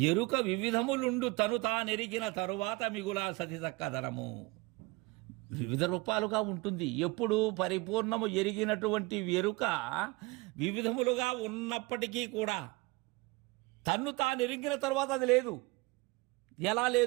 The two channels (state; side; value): quieter; left; 23.8 dB